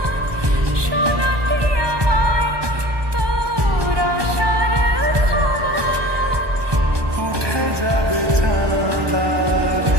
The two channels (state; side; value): late; left; 1.2 ms